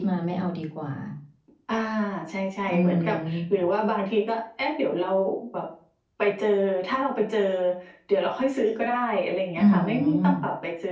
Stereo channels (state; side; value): identical; both; correlation 1.00